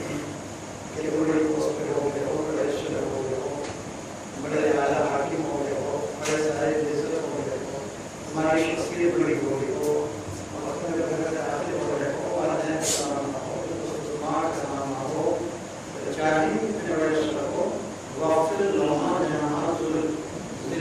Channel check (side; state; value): both; identical; correlation 1.00